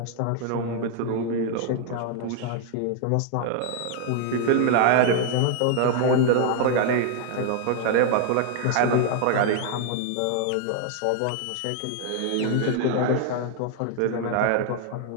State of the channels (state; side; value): different; both; correlation 0.00